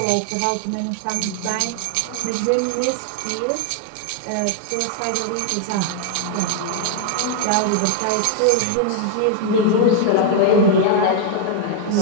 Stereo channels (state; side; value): different; both; correlation 0.00